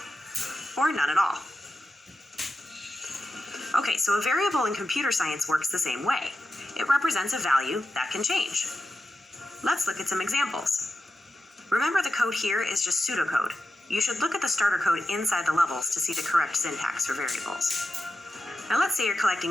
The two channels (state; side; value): normal; both; correlation 0.90